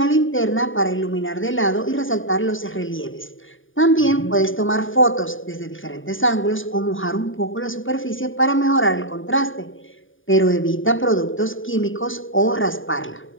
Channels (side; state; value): right; late; 0.57 ms